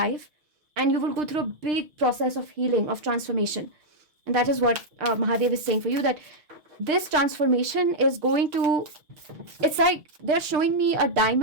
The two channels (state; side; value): late; left; 6.2 ms